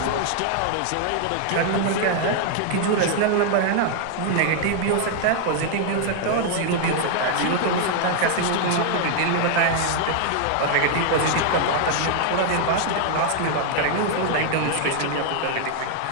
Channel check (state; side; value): different; both; correlation 0.00